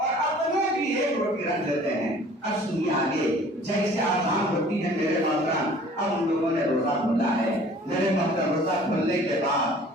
अपने भी एक रोटी रख देते हैं। अब सुनिए आगे, जैसे आसान होती है मेरे मोहतरम, अब उन लोगों ने रोजा खोला है। मेरे मोहतरम, रोजा खोलने के बाद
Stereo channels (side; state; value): both; normal; correlation 0.50